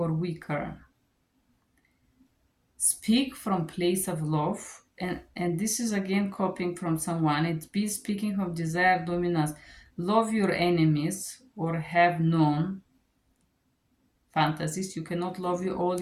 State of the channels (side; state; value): both; identical; correlation 1.00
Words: weaker, speak from place of love. And this is again copying from someone. It's be speaking from desire, dominance. Love your enemies or have known fantasies. You cannot love all